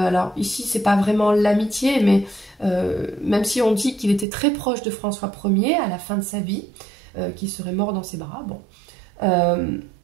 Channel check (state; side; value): drops out; left; at 4.2 s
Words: ici c'est pas vraiment l'amitié, mais même si on dit qu'il était très proche de François Ier à la fin de sa vie, qu'il serait mort dans ses bras, bon.